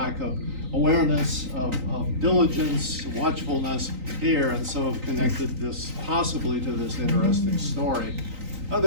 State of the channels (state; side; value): late; left; 3.9 ms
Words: of awareness, of diligence, watchfulness here, and so have connected this possibly to this interesting story.